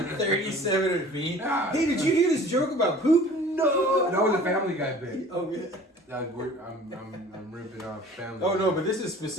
37 of me. Hey, did you hear this joke about poop? No. That was a Family Guy bit. Oh yeah. I'm ripping off Family. Oh no, but this is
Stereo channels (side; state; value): both; normal; correlation 0.46